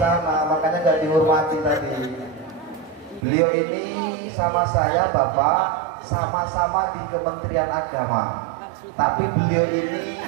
makanya nggak dihormati tadi. Beliau ini sama saya Bapak sama-sama di Kementerian Agama, tapi beliau ini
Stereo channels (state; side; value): drops out; left; at 3.2 s